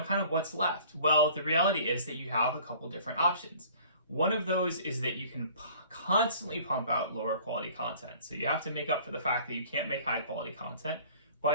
kind of what's left? Well, the reality is that you have a couple different options. One of those is that you can constantly pump out lower quality content. So you have to make up for the fact that you can't make high quality content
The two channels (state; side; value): inverted; both; correlation -0.50